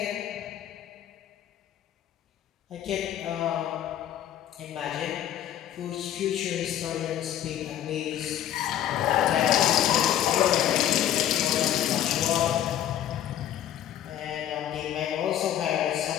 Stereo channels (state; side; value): quieter; right; 11.4 dB